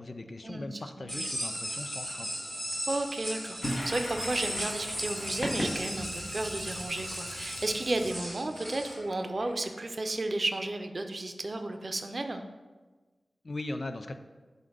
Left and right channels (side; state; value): both; normal; correlation 0.96